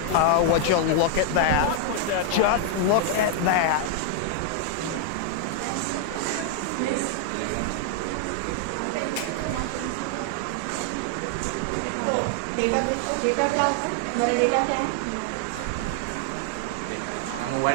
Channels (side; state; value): both; different; correlation 0.00